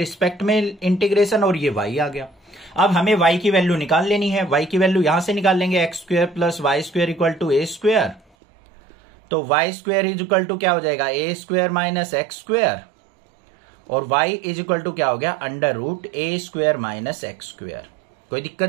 में इंटीग्रेशन, और ये y आ गया। अब हमें y की वैल्यू निकाल लेनी है। y की वैल्यू यहां से निकाल लेंगे, X square plus Y square equal to A square. तो Y square is equal to क्या हो जाएगा, A square minus X square, और वाई इज इक्वल टू क्या हो गया, under root A square minus X square. कोई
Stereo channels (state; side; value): drops out; left; at 8.2 s